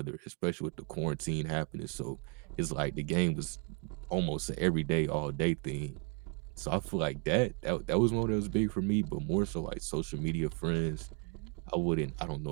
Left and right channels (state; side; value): quieter; left; 32.7 dB